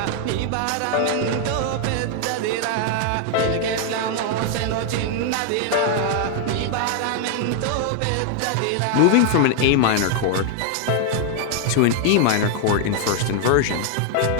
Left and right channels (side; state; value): both; different; correlation 0.00